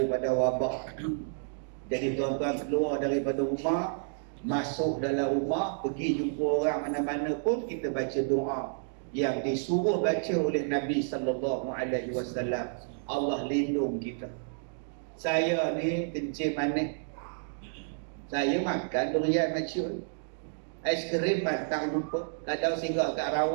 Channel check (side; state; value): left; silent; digital silence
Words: wabak. Jadi tuan-tuan keluar daripada rumah, masuk dalam rumah, pergi jumpa orang mana-mana pun, kita baca doa yang disuruh baca oleh Nabi SAW. Allah lindung kita. Saya ni kencing manis, saya makan durian maciun. Ais krim batang lupa. Kadang singgah kat